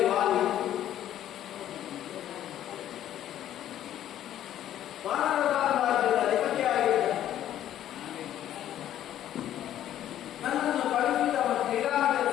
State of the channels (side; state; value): right; quieter; 11.7 dB